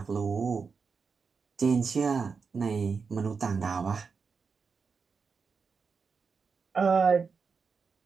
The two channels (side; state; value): left; quieter; 5.3 dB